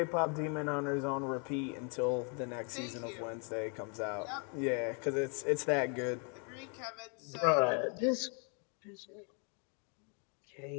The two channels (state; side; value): quieter; right; 37.5 dB